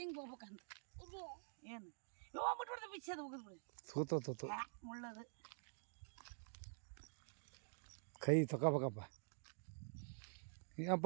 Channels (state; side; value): silent; left; digital silence